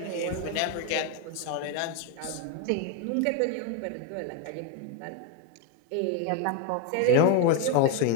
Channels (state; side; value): different; both; correlation 0.02